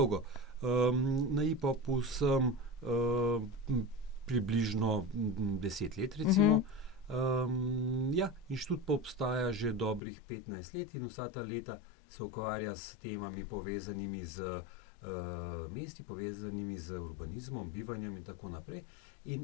Na IPOP-u sem približno 10 let, recimo. Inštitut pa obstaja že dobrih 15 let in vsa ta leta se ukvarja s temami povezanimi z mesti, povezanimi z urbanizmom, bivanjem in tako naprej. In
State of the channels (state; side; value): drops out; right; at 10.0 s